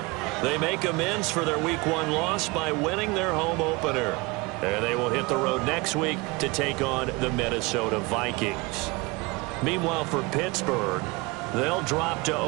they make amends for their Week 1 loss by winning their home opener. And they will hit the road next week to take on the Minnesota Vikings. Meanwhile, for Pittsburgh, they'll drop to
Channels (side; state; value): left; quieter; 25.2 dB